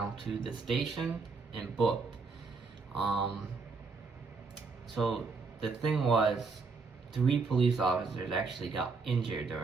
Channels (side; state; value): left; quieter; 4.5 dB